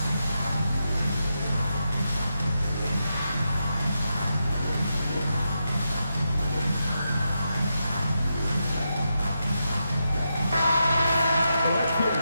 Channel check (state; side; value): inverted; both; correlation -0.86